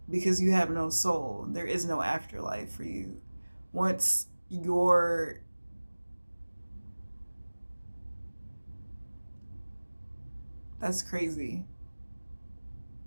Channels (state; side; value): inverted; both; correlation -1.00